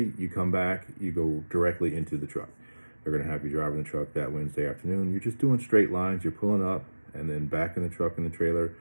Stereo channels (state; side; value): inverted; both; correlation -1.00